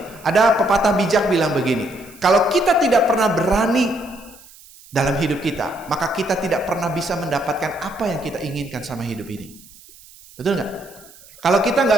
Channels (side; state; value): right; noise; hiss, 23 dB below the sound